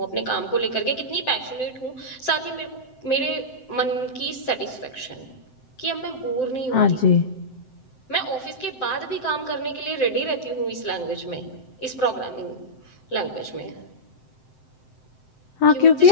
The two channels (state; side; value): late; right; 7.8 ms